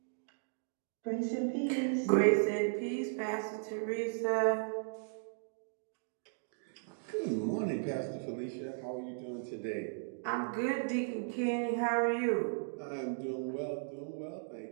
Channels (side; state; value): left; silent; digital silence